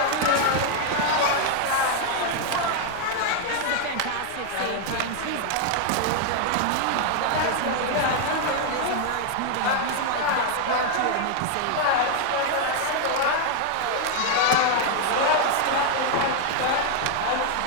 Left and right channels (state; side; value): different; both; correlation 0.00